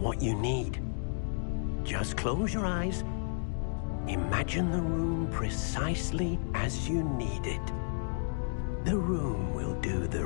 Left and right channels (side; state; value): right; silent; digital silence